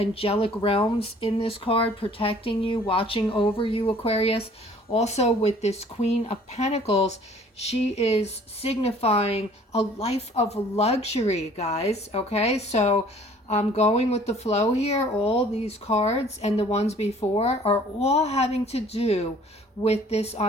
realms in this card protecting you, watching over you, Aquarius. Also with this Queen of Pentacles, she is signifying a life of luxury, guys, okay? So I'm going with the flow here. All these cards and the ones before are all having to do with this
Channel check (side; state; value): both; normal; correlation 0.54